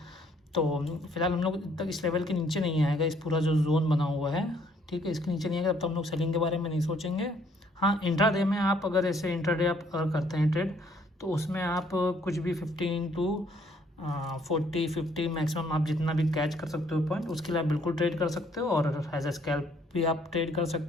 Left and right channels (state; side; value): normal; both; correlation 0.64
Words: तो फिलहाल हम लोग तक इस लेवल के नीचे नहीं आएगा, इस पूरा जो जोन बना हुआ है, ठीक है, इसके नीचे नहीं आएगा तब तो हम लोग सेलिंग के बारे में नहीं सोचेंगे। हाँ, इंट्राडे में आप अगर ऐसे इंट्राडे आप अगर करते हैं ट्रेड तो उसमें आप कुछ भी 15 to 40 50 मैक्सिमम आप जितना भी कैच कर सकते हो पॉइंट, उसके लिए आप बिल्कुल ट्रेड कर सकते हो और एज ए स्कैल्प भी आप ट्रेड कर